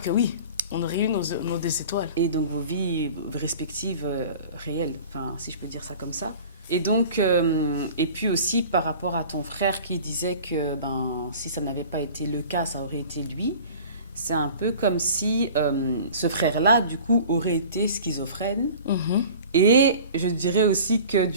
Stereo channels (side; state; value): both; inverted; correlation -0.42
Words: que oui, on aurait eu nos 2 étoiles. Et donc vos vies respectives réelles, enfin, si je peux dire ça comme ça. Et donc, et puis aussi par rapport à ton frère qui disait que ben, si ça n'avait pas été le cas, ça aurait été lui. C'est un peu comme si ce frère-là, du coup, aurait été schizophrène. Mhm. Et je dirais aussi que,